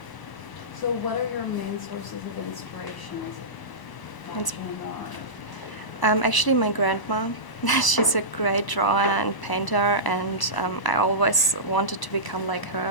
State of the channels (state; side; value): late; right; 1.0 ms